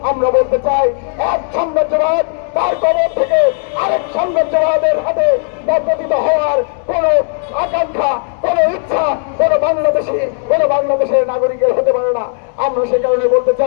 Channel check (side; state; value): right; silent; digital silence